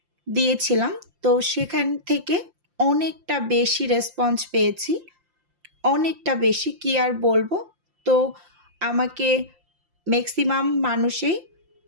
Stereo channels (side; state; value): left; late; 5.7 ms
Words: দিয়েছিলাম। তো সেখান থেকে অনেকটা বেশি রেসপন্স পেয়েছি, অনেকটা বেশি, কি আর বলবো। তো আমাকে ম্যাক্সিমাম মানুষই